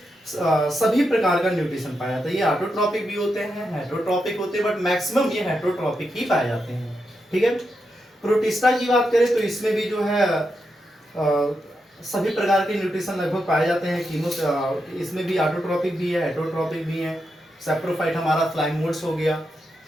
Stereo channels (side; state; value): both; normal; correlation 0.85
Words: सभी प्रकार का न्यूट्रिशन पाया जाता है। ये ऑटोट्रॉपिक भी होते हैं, हेटरोट्रॉपिक होते हैं, बट मैक्सिमम ये हेटरोट्रॉपिक ही पाए जाते हैं। ठीक है। प्रोटिस्टा की बात करें तो इसमें भी जो है सभी प्रकार के न्यूट्रिशन लगभग पाए जाते हैं। इसमें भी ऑटोट्रॉपिक भी है, हेटरोट्रॉपिक भी है। सैप्रोफाइट हमारा फ्लाइंग मोड्स हो गया,